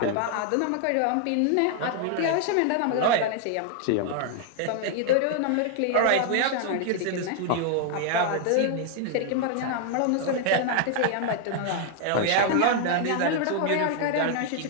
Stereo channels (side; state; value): both; different; correlation 0.00